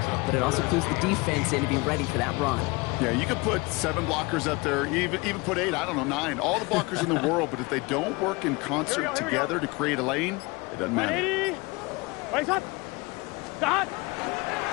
but it also clues the defense in to be ready for that run. Yeah, you could put 7 blockers up there, even put 8, I don't know, 9. All the blockers in the world, but if they don't work in concert together to create a lane, it doesn't matter. Raise up. Start.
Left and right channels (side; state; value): right; quieter; 25.1 dB